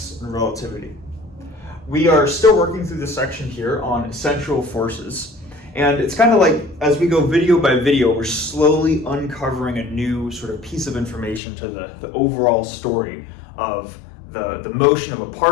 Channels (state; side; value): drops out; right; at 11.4 s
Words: and relativity. We are still working through this section here on essential forces, and it's kind of like as we go video by video, we're slowly uncovering a new sort of piece of information to the overall story of the motion of a